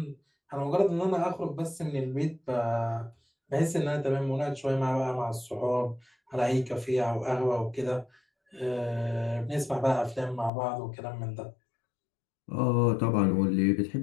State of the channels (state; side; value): drops out; right; at 10.5 s